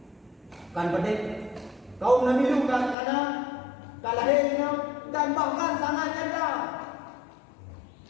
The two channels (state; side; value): drops out; right; at 3.0 s